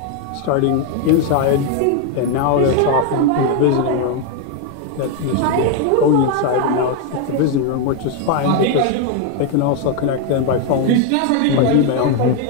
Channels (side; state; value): both; different; correlation 0.01